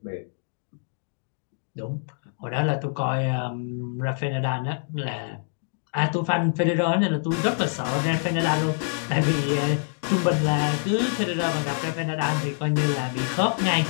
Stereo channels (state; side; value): silent; right; digital silence